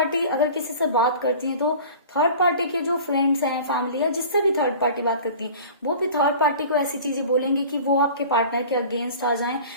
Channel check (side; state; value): both; inverted; correlation -0.41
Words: अगर किसी से बात करती है तो थर्ड पार्टी के जो फ्रेंड्स हैं, फैमिली या जिससे भी थर्ड पार्टी बात करती है, वो भी थर्ड पार्टी को ऐसी चीजें बोलेंगे कि वो आपके पार्टनर के अगेंस्ट आ जाएं